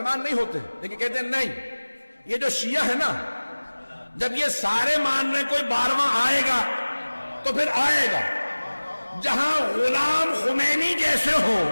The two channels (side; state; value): both; inverted; correlation -1.00